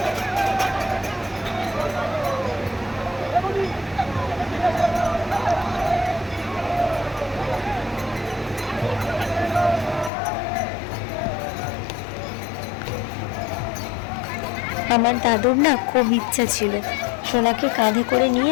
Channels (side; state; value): right; drops out; at 10.1 s